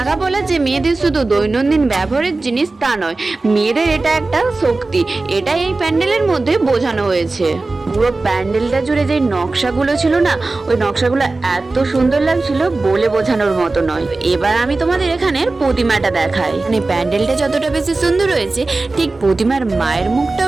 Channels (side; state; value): left; quieter; 3.4 dB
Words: পলা যে মেয়েদের শুধু দৈনন্দিন ব্যবহারের জিনিস তা নয়, মেয়েদের এটা একটা শক্তি, এটাই এই প্যান্ডেলের মধ্যে বোঝানো হয়েছে। পুরো প্যান্ডেলটা জুড়ে যে নকশাগুলো ছিল না, ওই নকশাগুলো এত সুন্দর লাগছিল বলে বোঝানোর মতো নয়। এবার আমি তোমাদের এখানের প্রতিমাটা দেখাই। মানে প্যান্ডেলটা যতটা বেশি সুন্দর হয়েছে, ঠিক প্রতিমার মায়ের